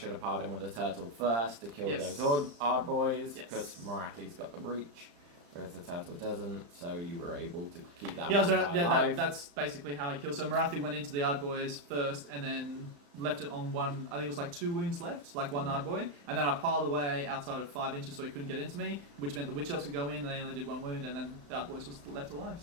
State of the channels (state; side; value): late; left; 35 ms